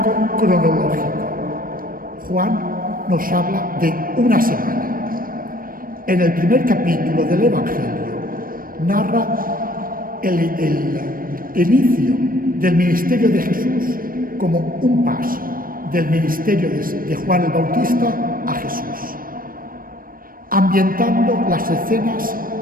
cronológico. Juan nos habla de una semana. En el primer capítulo del Evangelio narra el inicio del ministerio de Jesús como un paso del ministerio de Juan el Bautista a Jesús, ambientando las escenas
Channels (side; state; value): left; late; 0.41 ms